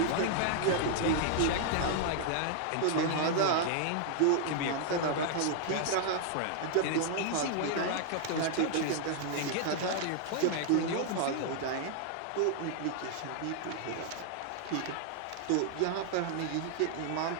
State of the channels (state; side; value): different; both; correlation 0.00